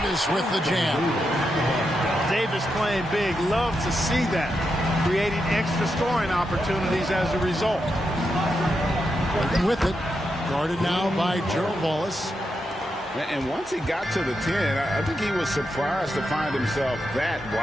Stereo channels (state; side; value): normal; both; correlation 0.85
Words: with the jam. Davis playing big. Love to see that. Creating extra scoring opportunities as a result. Working with it. Guarded now by Gerald Wallace. And once he got to the 10, I think he was surprised to find himself that